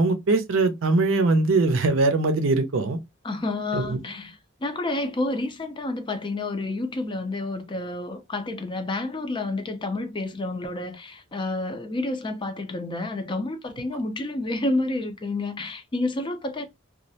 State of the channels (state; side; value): normal; both; correlation 0.44